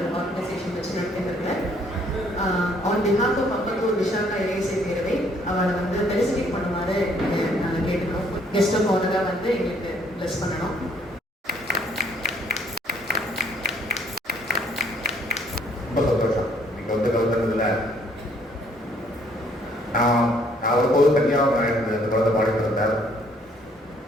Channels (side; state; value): both; normal; correlation 0.64